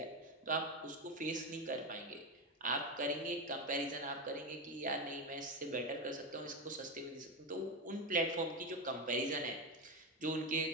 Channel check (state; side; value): normal; both; correlation 0.13